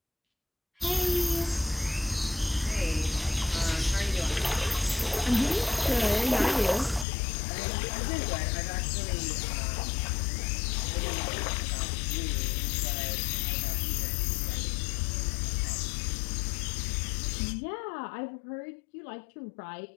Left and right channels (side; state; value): right; drops out; at 7.1 s